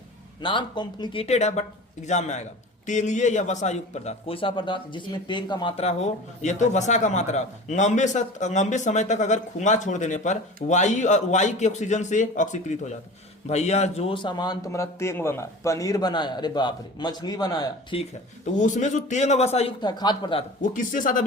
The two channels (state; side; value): normal; both; correlation 0.37